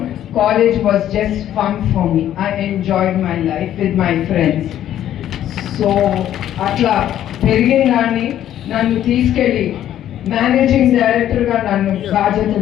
college was just fun for me. I enjoyed my life with my friends. So అట్లా పెరిగిన దాన్ని నన్ను తీసుకెళ్ళి మేనేజింగ్ డైరెక్టర్గా నన్ను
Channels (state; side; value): quieter; right; 11.5 dB